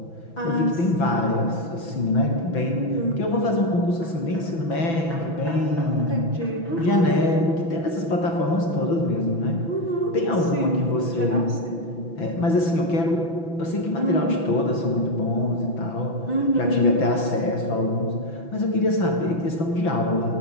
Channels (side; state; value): right; late; 6.0 ms